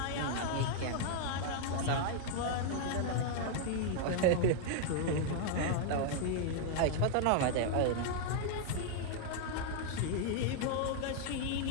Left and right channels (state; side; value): different; both; correlation 0.00